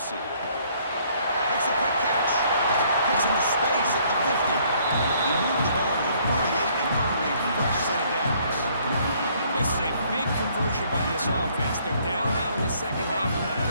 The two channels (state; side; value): inverted; both; correlation -0.63